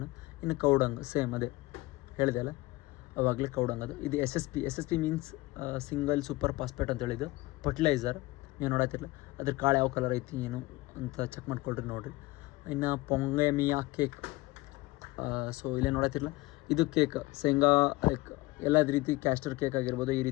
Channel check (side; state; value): right; quieter; 20.5 dB